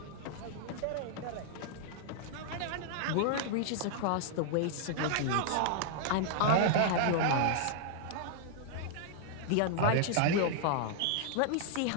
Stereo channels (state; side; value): different; both; correlation -0.01